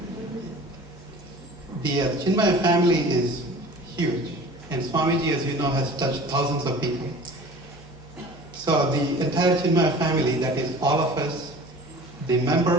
The Chinmaya family is huge, and Swamiji, as you know, has touched thousands of people. So the entire Chinmaya family, that is all of us, the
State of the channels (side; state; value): both; normal; correlation 0.42